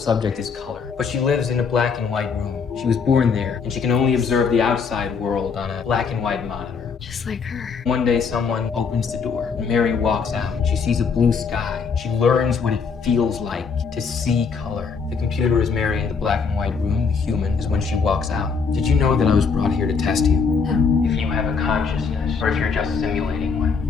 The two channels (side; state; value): right; quieter; 5.5 dB